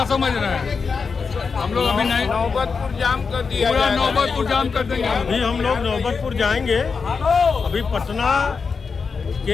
समझ रहे हैं? हम लोग अभी नहीं, नौबतपुर जाम कर दिया, पूरा नौबतपुर जाम कर देंगे। अभी हम लोग नौबतपुर जाएंगे। अभी पटना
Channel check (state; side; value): quieter; right; 5.2 dB